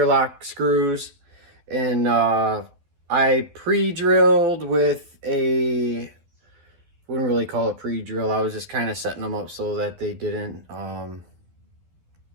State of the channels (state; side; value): late; left; 12 ms